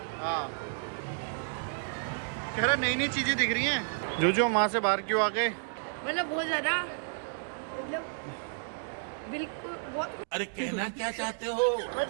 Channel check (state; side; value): silent; left; digital silence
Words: हाँ, कह रहा नई नई चीजें दिख रही हैं। जो वहाँ से बाहर क्यों आ गए? मतलब बहुत ज्यादा, मतलब बिल्कुल बहुत अरे कहना क्या चाहते हो?